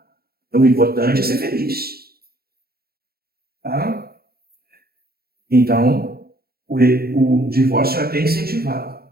Então, o importante é ser feliz. Tá? Então, o divórcio é até incentivado.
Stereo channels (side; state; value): left; late; 0.45 ms